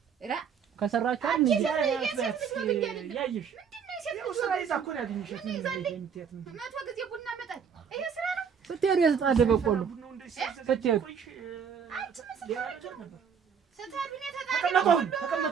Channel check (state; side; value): quieter; left; 7.0 dB